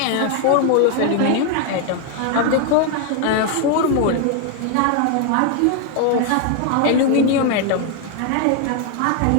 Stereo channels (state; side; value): different; both; correlation 0.00